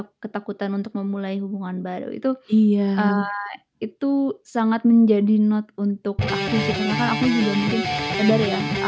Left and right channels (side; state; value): both; identical; correlation 1.00